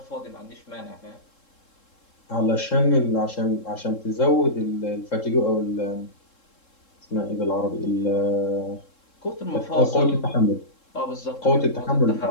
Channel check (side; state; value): right; late; 3.7 ms